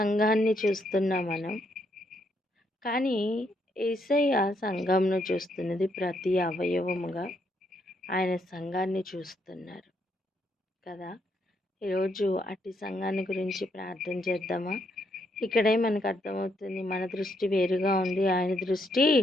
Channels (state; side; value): normal; both; correlation 0.75